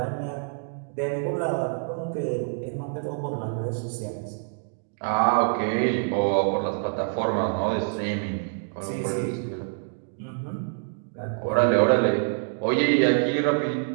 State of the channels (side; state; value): left; silent; 59 dB below the other